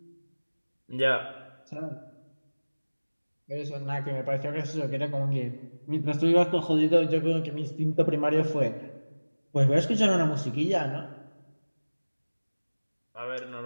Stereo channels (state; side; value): inverted; both; correlation -1.00